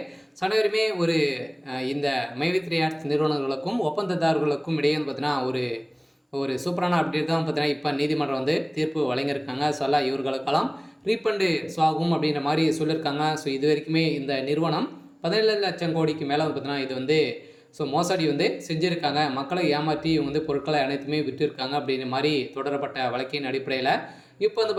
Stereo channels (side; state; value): both; identical; correlation 1.00